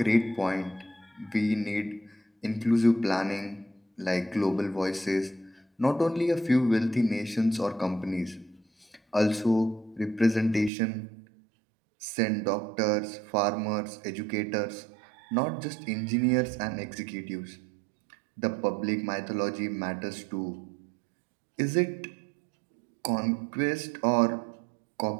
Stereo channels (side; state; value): left; drops out; at 10.7 s